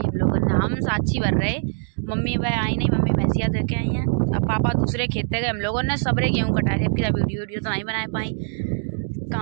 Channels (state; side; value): silent; left; digital silence